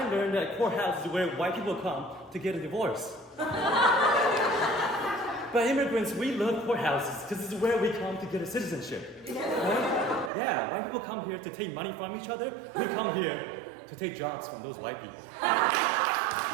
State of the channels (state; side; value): drops out; left; at 10.3 s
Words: learned that courthouse is where white people come to get a divorce. But immigrants, we love courthouses because this is where we come to get a citizenship. Right? Yeah, white people come here to take money from each other. We come here to take jobs from those white people.